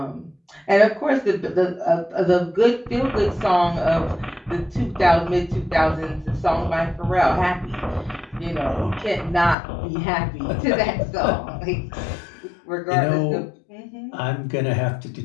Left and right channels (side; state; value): right; drops out; at 9.6 s